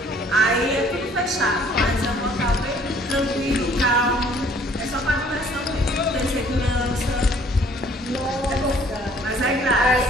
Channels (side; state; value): both; normal; correlation 0.58